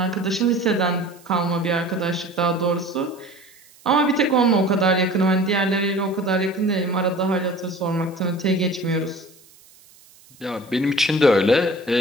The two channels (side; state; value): right; noise; hiss, 27 dB below the sound